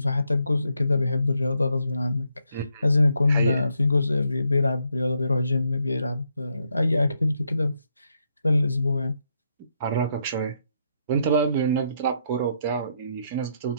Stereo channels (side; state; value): both; inverted; correlation -0.77